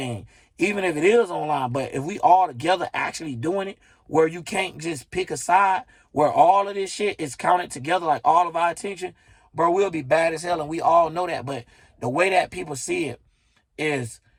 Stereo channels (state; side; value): identical; both; correlation 1.00